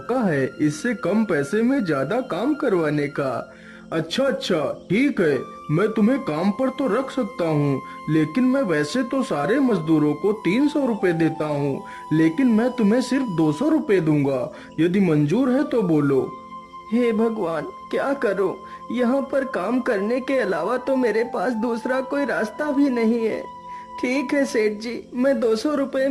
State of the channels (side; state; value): both; identical; correlation 1.00